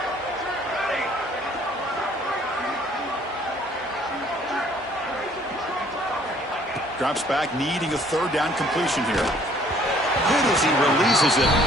Drops back, needing a third down completion here. Good as he releases it,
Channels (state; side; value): normal; both; correlation 0.59